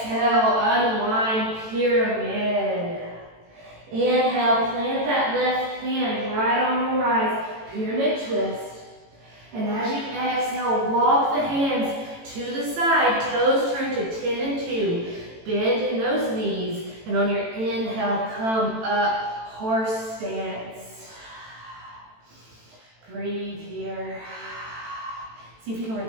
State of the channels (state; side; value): late; left; 18 ms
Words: unwind, pyramid. Inhale, plant that left hand right on the rise, pyramid twist. And as you exhale, walk the hands to the side, toes turn to 10 and 2. Bend in those knees, and on your inhale, come up, horse stance. Breathe here. See if you can